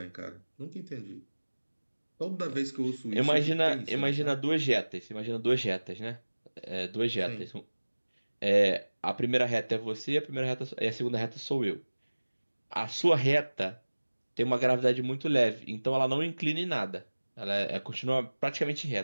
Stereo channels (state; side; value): inverted; both; correlation -1.00